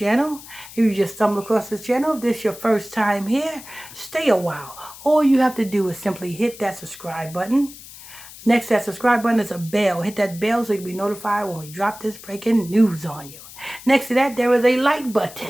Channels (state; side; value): noise; left; hiss, 17 dB below the sound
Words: if you just stumbled across this channel, if this is your first time here, stay a while. All you have to do is simply hit that subscribe button. Next to that subscribe button is a bell. Hit that bell so you'll be notified when we drop this breaking news on you. Next to that, there is a like